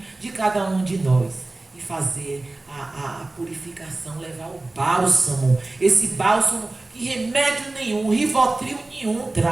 de cada um de nós e fazer a purificação, levar o bálsamo, esse bálsamo que remédio nenhum, Rivotril nenhum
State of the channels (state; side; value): quieter; left; 3.0 dB